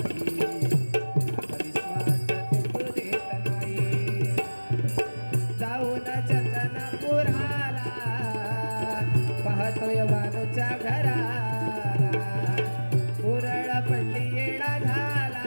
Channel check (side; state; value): both; inverted; correlation -1.00